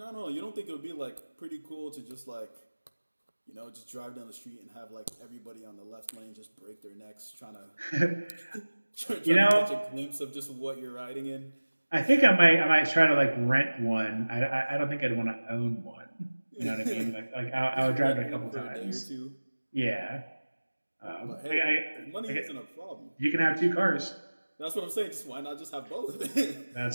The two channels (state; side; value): inverted; both; correlation -1.00